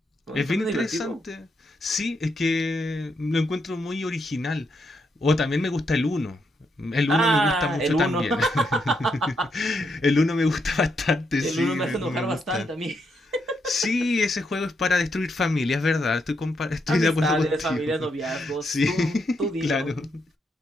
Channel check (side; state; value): both; normal; correlation 0.79